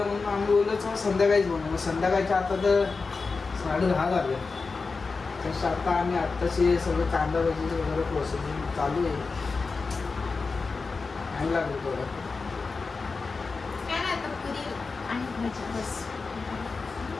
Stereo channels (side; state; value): right; quieter; 4.3 dB